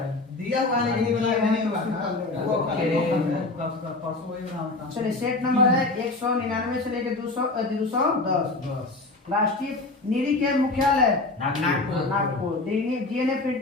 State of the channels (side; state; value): right; quieter; 3.2 dB